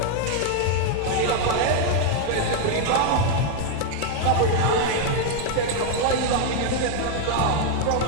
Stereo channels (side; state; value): both; different; correlation 0.00